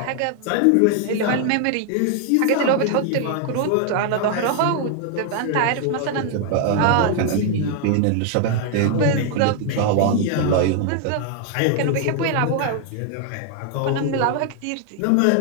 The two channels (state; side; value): different; both; correlation 0.00